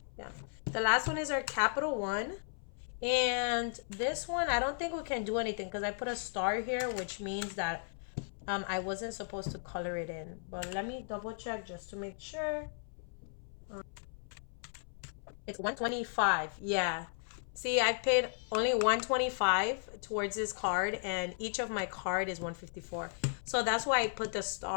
the last one is our capital one. And this one, I don't think we can do anything because I put a star here, which means that I wasn't supposed to color it in. But let me double check just to make sure. It's 125. Yeah. See, I paid only 125 towards this card, and each of my card is 154. So that's why I put the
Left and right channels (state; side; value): silent; right; 54 dB below the other